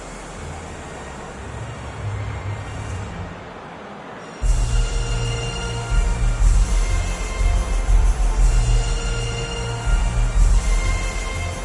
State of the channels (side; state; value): both; identical; correlation 1.00